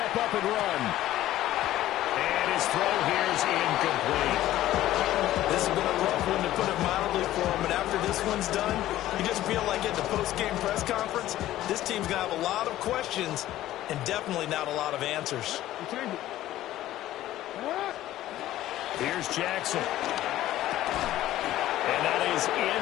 up and run. And his throw here is incomplete. This has been a rough one, to put it mildly, for him. But after this one's done, you just feel like at the post-game press conference, this team's going to have a lot of questions and definitely not a lot of answers. We changed it. Here's Jackson. And that is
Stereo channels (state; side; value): quieter; right; 14.2 dB